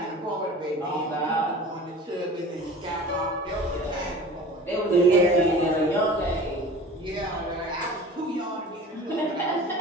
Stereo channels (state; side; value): normal; both; correlation 0.40